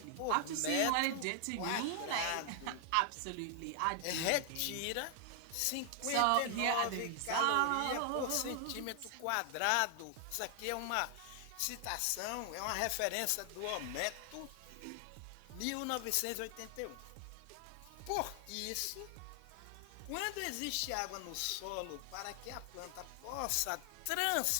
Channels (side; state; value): both; different; correlation 0.00